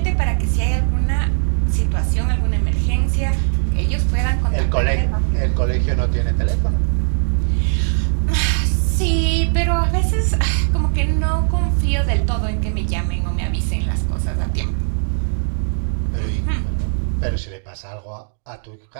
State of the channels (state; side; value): silent; left; digital silence